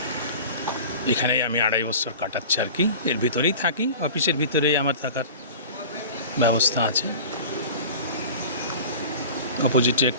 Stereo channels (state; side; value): inverted; both; correlation -0.38